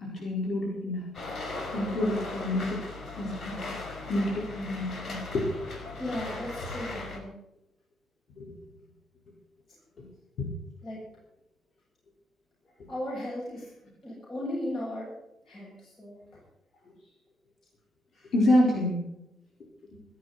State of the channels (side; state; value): both; normal; correlation 0.75